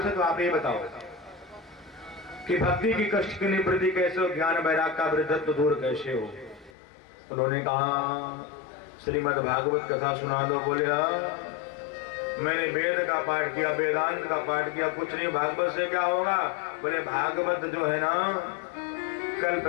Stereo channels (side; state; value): right; drops out; at 6.7 s